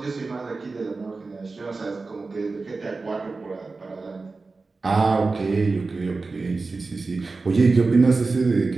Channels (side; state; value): left; quieter; 3.9 dB